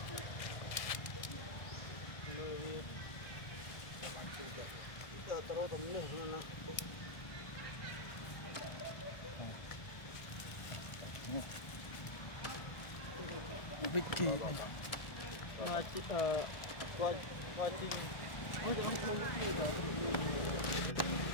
Vicky này mà coi coi tin ôi không không cái gì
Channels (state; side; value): late; right; 1.6 ms